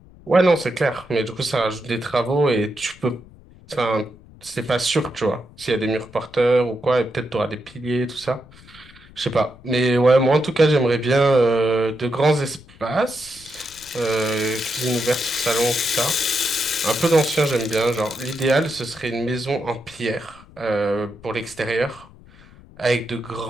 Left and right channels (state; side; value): noise; left; rumble, 23 dB below the sound